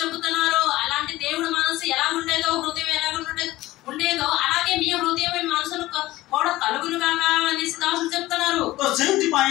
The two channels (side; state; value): right; quieter; 17.3 dB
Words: చెబుతున్నారు అలాంటి దేవుడి మనసు ఎలా ఉండేదో హృదయం ఎలా ఉండేదో అలాగే మీ హృదయం మనసును కూడా కలుగును గాక అని దాసులు చెప్తున్నారు. तो सेति